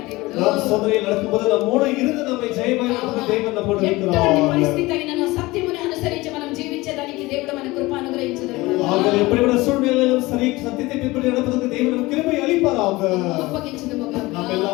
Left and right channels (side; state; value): right; quieter; 20.8 dB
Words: దేవుడు. நாம் சோதனையில் நடக்கும்போது நம்மோடு இருந்து நம்மை ஜெயமாய் நடத்துகிற தேவன் நம்மோடு ఎటువంటి இருக்கிறார். పరిస్థితి అయినను సత్యముని అనుసరించి మనం జీవించేదానికి దేవుడు మన కృప అనుగ్రహించును. ஆக எப்படிப்பட்ட சூழ்நிலையிலும் சரி சத்தியத்தை பின்பற்றி நடப்பதற்கு தேவன் நமக்கு கிருபை அளிப்பாராக. అప్పగించుదుము గాక. நாம்